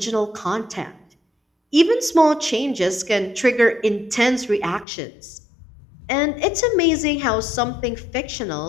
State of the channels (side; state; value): right; drops out; at 4.9 s